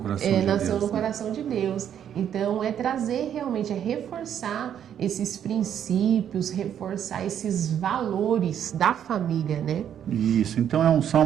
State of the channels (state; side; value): quieter; left; 9.4 dB